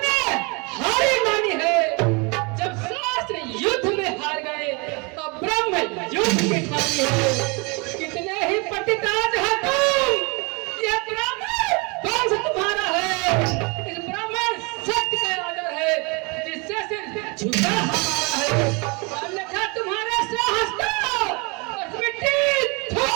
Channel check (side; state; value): left; quieter; 30.0 dB